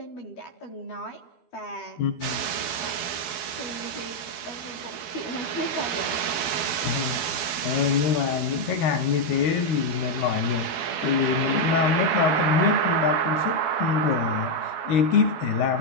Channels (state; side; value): late; right; 12 ms